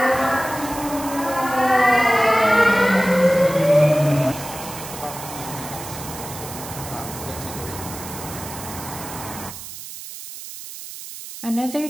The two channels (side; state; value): right; noise; hiss, 12 dB below the sound